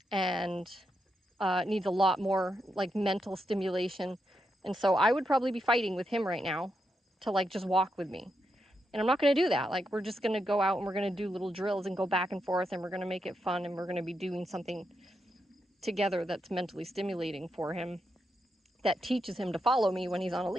and needs a lot more like mental stimulation. And so I would probably be fighting with him right now to like just walk with me. And I'm not going to do that. Like, we're just going to go out and we're going to do little drills and go back and forth, and we're going to make it fun, and we're going to be doing something together that's mentally stimulating for him, that teaches him to follow me when he's on a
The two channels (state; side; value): normal; both; correlation 0.83